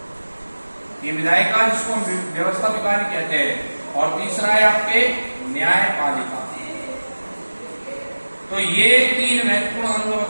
ये विधायिका जिसको हम व्यवस्था विकारी कहते हैं, और तीसरा है आपके न्यायपालिका। तो ये तीन महत्वपूर्ण अंग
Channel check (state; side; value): inverted; both; correlation -1.00